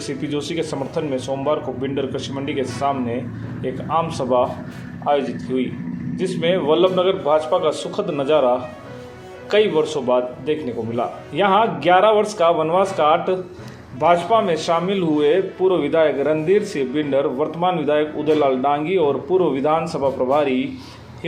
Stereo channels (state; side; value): identical; both; correlation 1.00